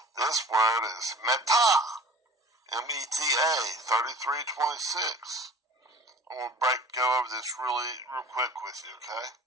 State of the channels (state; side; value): normal; both; correlation 0.44